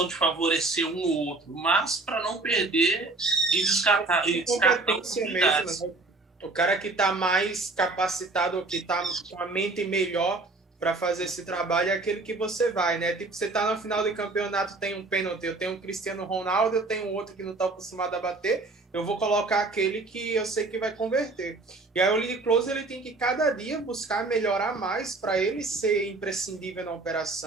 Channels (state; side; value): quieter; left; 3.4 dB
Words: de favorecer um ou outro, mas para não perder e descartar oportunidades. Mesmo, né? O cara que está mais capacitado, que está com a mente melhor para fazer esse trabalho é aquele que você vai, né? Tipo, você está no final do campeonato, tem um pênalti, eu tenho um Cristiano Ronaldo, eu tenho outro que não está acostumado a bater, eu vou colocar aquele que eu sei que vai converter. E aí o lead closer ele tem que cada dia buscar melhorar mais para ele ser imprescindível na